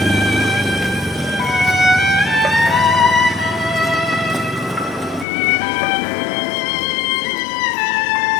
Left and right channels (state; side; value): drops out; right; at 5.2 s